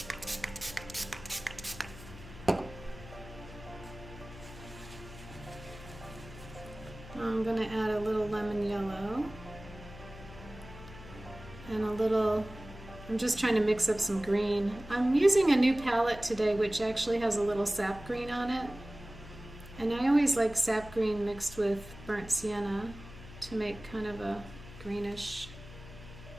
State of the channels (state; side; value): noise; left; hum, 16 dB below the sound